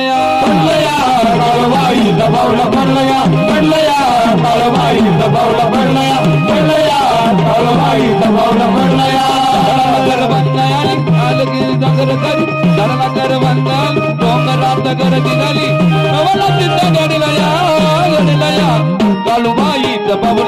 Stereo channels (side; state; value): both; identical; correlation 1.00